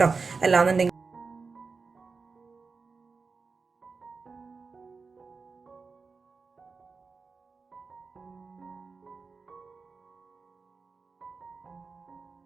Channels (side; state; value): left; quieter; 4.6 dB